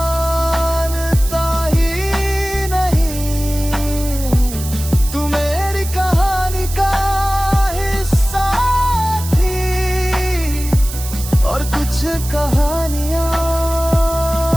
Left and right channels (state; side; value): noise; right; hiss, 11 dB below the sound